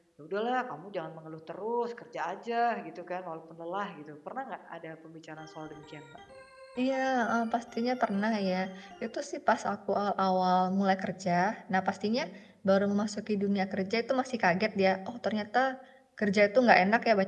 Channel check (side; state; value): both; identical; correlation 1.00